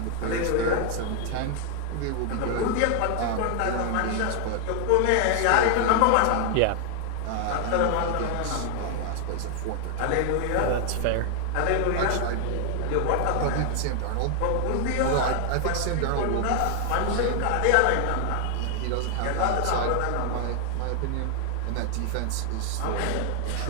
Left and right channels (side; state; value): both; different; correlation 0.00